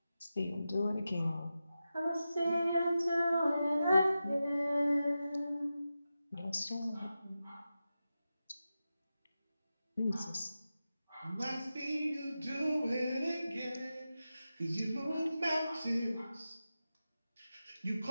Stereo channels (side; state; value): both; inverted; correlation -0.92